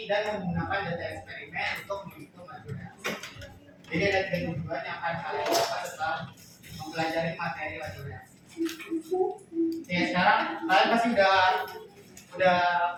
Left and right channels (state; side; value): identical; both; correlation 1.00